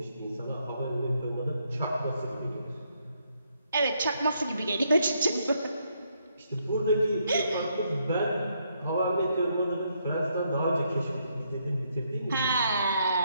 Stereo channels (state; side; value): inverted; both; correlation -0.75